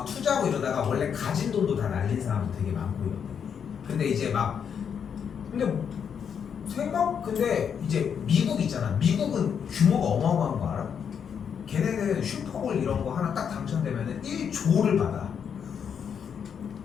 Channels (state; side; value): quieter; right; 7.5 dB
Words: 투자하고 이러다가 원래 가진 돈도 다 날린 사람도 되게 많고 이러대. 근데 이제 막 근데 이제 미국 있잖아. 미국은 규모가 어마어마한 거 알아? 걔네는 슈퍼볼 이런 거 하나 딱 당첨되면은 1조를 받아.